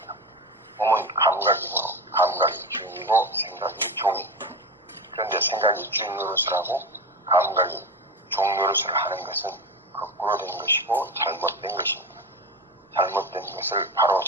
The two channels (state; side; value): normal; both; correlation 0.23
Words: 몸은 감각이므로 감각이 주인이고 생각이 종입니다. 그런데 생각이 주인 노릇을 하고 감각이 종 노릇을 하는 것은 거꾸로 된 것이고 잘못된 것입니다. 잘못된 것을 바로